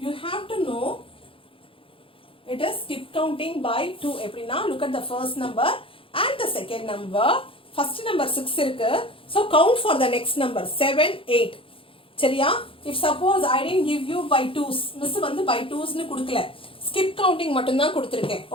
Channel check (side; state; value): right; late; 0.26 ms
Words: you have to know it is skip counting by 2. எப்படினா look at the first number and the second number. First number 6 இருக்கு. So count for the next number 7, 8. சரியா? If suppose I didn't give you by 2s, miss வந்து by 2s னு கொடுக்கல, skip counting மட்டும் தான் கொடுத்திருக்கேன்.